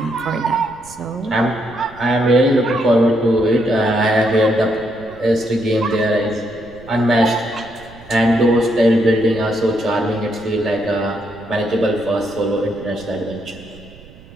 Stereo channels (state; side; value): noise; right; rumble, 22 dB below the sound